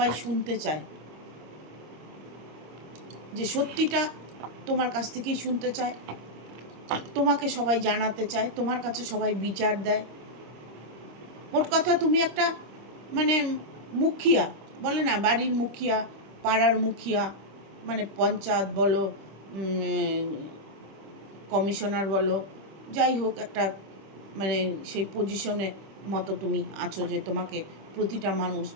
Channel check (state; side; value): late; left; 26 ms